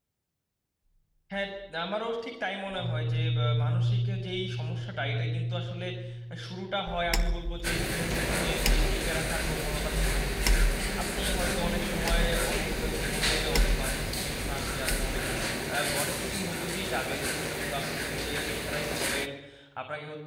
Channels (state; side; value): identical; both; correlation 1.00